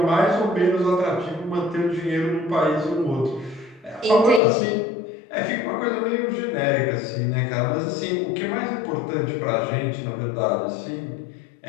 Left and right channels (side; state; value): right; drops out; at 4.4 s